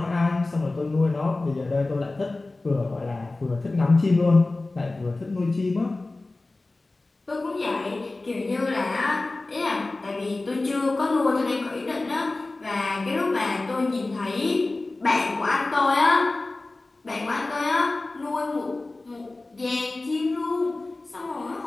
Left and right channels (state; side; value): quieter; right; 3.1 dB